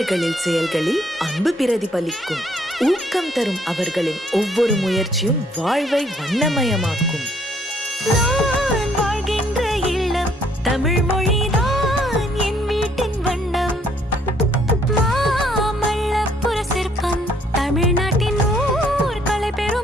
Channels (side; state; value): both; normal; correlation 0.66